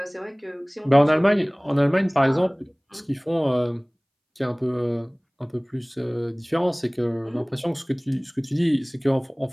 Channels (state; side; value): identical; both; correlation 1.00